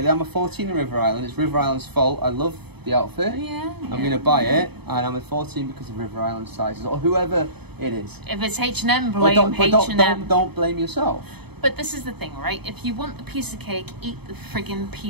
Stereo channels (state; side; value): late; left; 0.98 ms